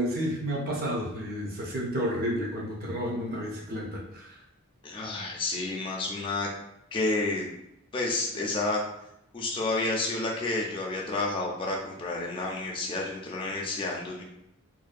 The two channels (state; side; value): normal; both; correlation 0.25